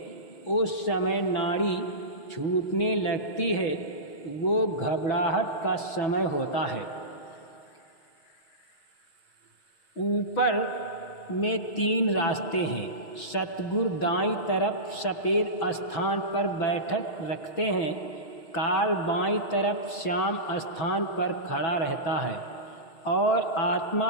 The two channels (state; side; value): late; right; 6.5 ms